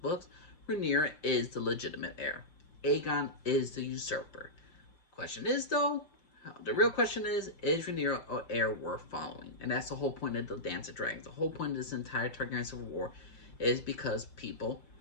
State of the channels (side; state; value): right; late; 5.8 ms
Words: Rhaenyra is the legitimate heir. Aegon is the usurper. Question is, though, the real question is Rhaenyra an heir worth following? And that's the whole point of the Dance of Dragons. The whole point of this entire Targaryen Civil War is because